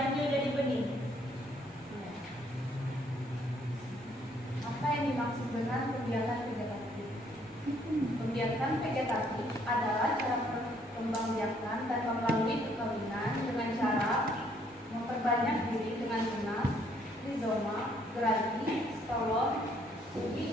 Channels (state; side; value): normal; both; correlation 0.66